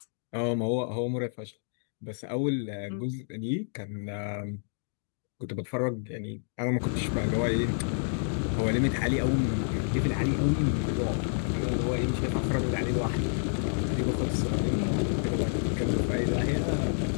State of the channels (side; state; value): right; silent; digital silence